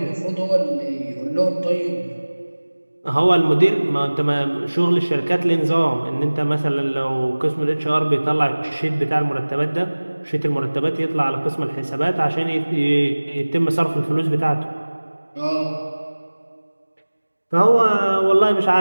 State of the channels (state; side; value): inverted; both; correlation -1.00